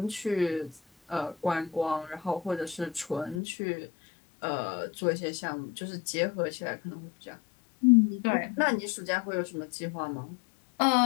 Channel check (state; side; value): drops out; right; at 3.4 s